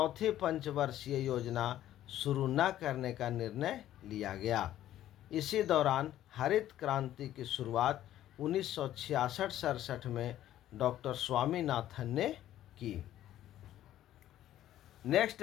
पंचवर्षीय योजना शुरू न करने का निर्णय लिया गया। इसी दौरान हरित क्रांति की शुरुआत 1966-67 में डॉक्टर स्वामीनाथन ने की। नेक्स्ट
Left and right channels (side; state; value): right; quieter; 12.8 dB